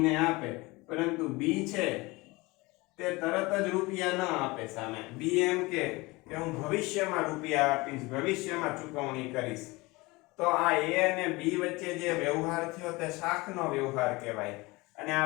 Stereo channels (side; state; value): right; quieter; 23.1 dB